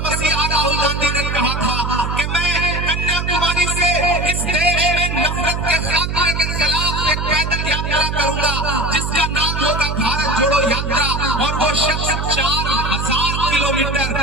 मसीहा राहुल गांधी ने कहा था कि मैं कन्याकुमारी से इस देश में नफरत के खात्मे के खिलाफ एक पैदल यात्रा करूंगा जिसका नाम होगा भारत जोड़ो यात्रा। और वो शख्स 4000 किलोमीटर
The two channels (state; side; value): noise; right; hum, 2 dB below the sound